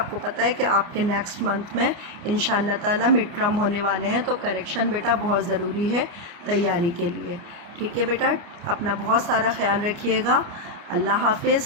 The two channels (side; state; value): left; late; 29 ms